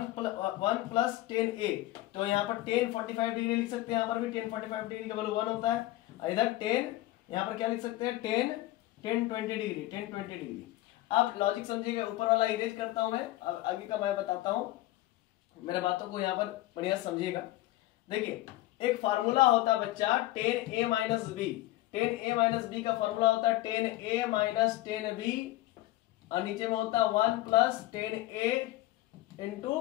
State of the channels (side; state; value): right; quieter; 16.8 dB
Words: प्लस tan a, तो यहाँ पर tan 45 डिग्री लिख सकते हैं, यहाँ पर भी tan 45 डिग्री का वैल्यू 1 होता है। और इधर tan, यहाँ पर क्या लिख सकते हैं tan 20 डिग्री, tan 20 डिग्री। आप लॉजिक समझिएगा, ऊपर वाला इरेज करता हूं मैं, आगे का मैं बताता हूं, मेरे बातों को यहाँ पर बढ़िया समझिएगा। देखिए एक फार्मूला होता है बच्चा tan a minus b, tan a minus b का फार्मूला होता है tan a minus tan b और नीचे में होता है 1 plus tan a into